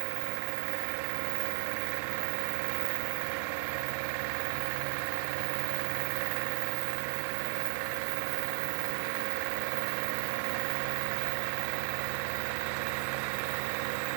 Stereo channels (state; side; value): silent; left; 55 dB below the other